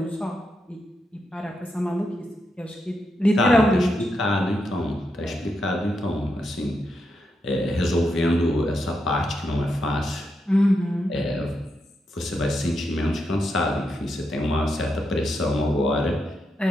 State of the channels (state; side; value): normal; both; correlation 0.84